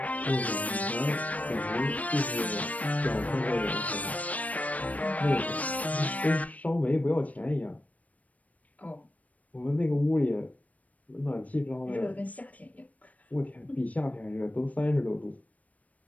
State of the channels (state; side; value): late; right; 0.070 ms